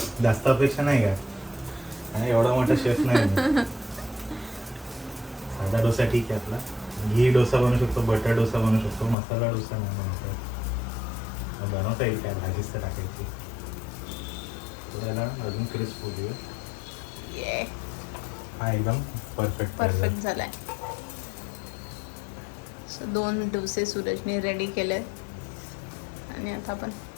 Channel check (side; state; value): right; drops out; at 9.2 s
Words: जास्त अपेक्षा नाही का, एवढा मोठा शेफ नाही. साधा डोसा ठीक आहे आपला. घी डोसा बनवू शकतो, बटर डोसा बनवू शकतो, मसाला डोसा नाही बनवतो. बनवता येईल काय, भाजीच तर टाकायची. त्याला अजून क्रिस्प होऊ दे. हा एकदम परफेक्ट झालाय. 2 डोसे सूरजने रेडी केले आणि आता आपण